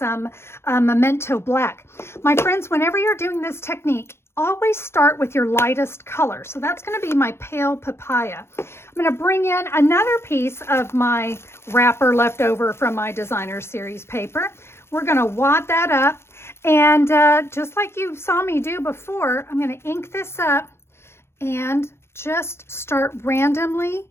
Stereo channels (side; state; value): right; late; 0.12 ms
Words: Memento Black. My friends, whenever you're doing this technique, always start with your lightest color. So that's going to be my Pale Papaya. I'm going to bring in another piece of my wrapper left over from my Designer Series paper. We're going to wad that up. And just like you saw me do before, I'm going to ink this up and just start randomly